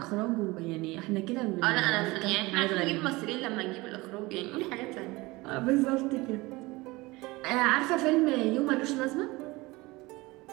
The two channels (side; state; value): left; quieter; 22.1 dB